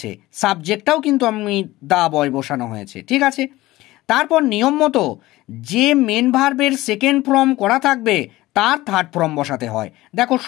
সাবজেক্টটাও কিন্তু আমি দা বয় বসানো হয়েছে, ঠিক আছে। তারপর নিয়ম মতো যে মেন ভার্বের সেকেন্ড ফর্ম করা থাকবে তার থার্ড ফর্ম বসাতে হয়। দেখো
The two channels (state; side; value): quieter; right; 17.9 dB